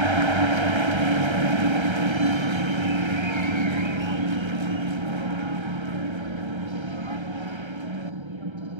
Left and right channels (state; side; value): late; left; 1.3 ms